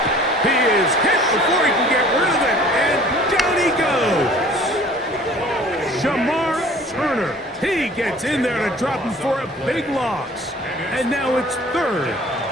He is hit before he can get rid of it, and down he goes. Shamar Turner. He gets in there to drop him for a big loss. And now it's 3rd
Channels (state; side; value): normal; both; correlation 0.50